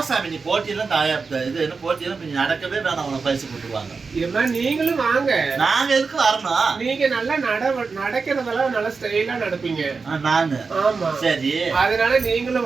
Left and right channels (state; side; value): quieter; left; 4.7 dB